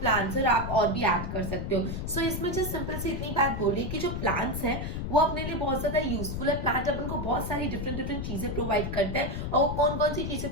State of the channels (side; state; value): left; noise; rumble, 4 dB below the sound